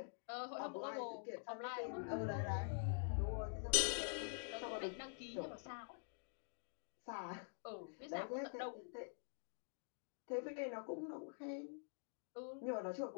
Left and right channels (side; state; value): right; silent; digital silence